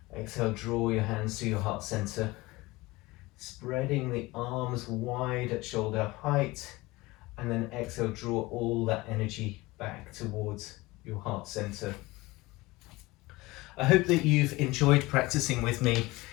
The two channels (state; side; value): quieter; right; 21.0 dB